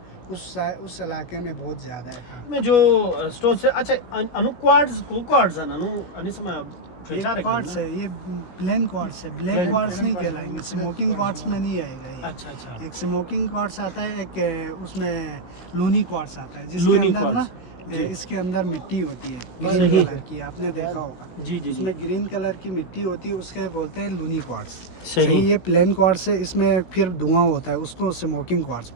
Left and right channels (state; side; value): late; right; 16 ms